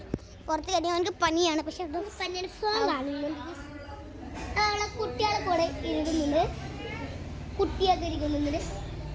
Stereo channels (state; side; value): identical; both; correlation 1.00